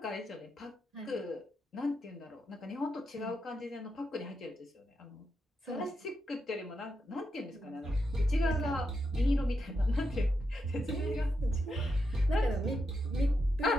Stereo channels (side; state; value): both; normal; correlation 0.85